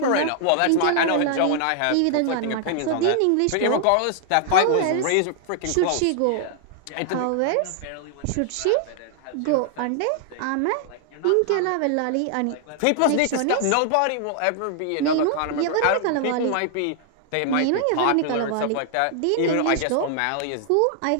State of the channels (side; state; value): both; different; correlation 0.00